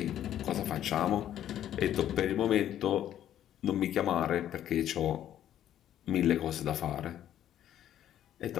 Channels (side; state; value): right; quieter; 11.3 dB